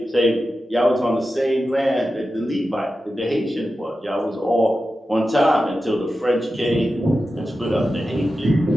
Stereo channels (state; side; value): normal; both; correlation 0.92